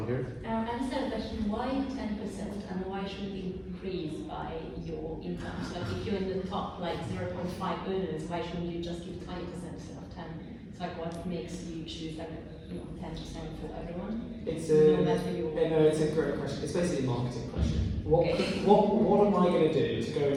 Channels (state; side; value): identical; both; correlation 1.00